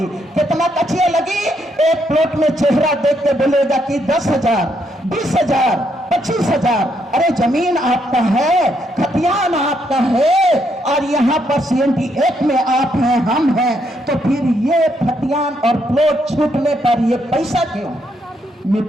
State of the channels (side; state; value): both; normal; correlation 0.75